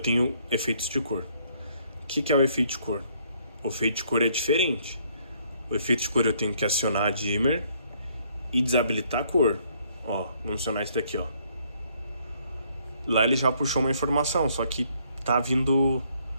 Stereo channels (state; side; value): inverted; both; correlation -0.67